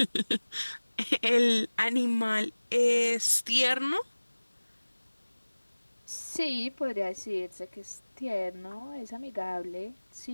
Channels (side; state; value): both; inverted; correlation -1.00